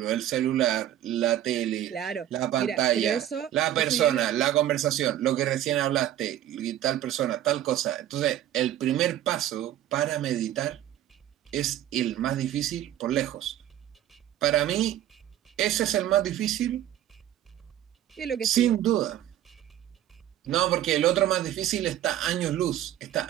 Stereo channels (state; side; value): quieter; left; 12.0 dB